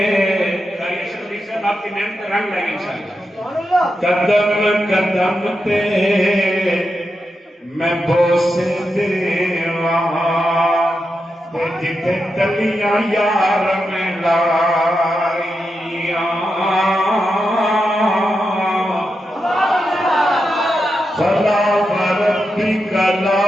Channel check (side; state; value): both; normal; correlation 0.87